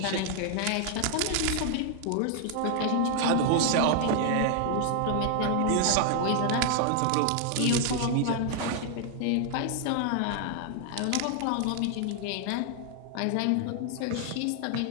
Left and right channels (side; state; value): both; different; correlation 0.00